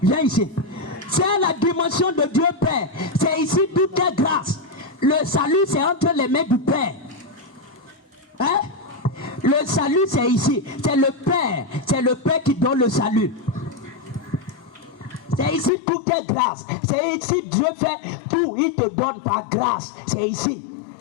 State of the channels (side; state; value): right; drops out; at 15.7 s